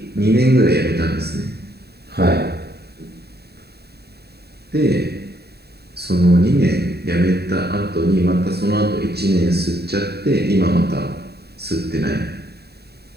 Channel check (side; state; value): left; late; 0.47 ms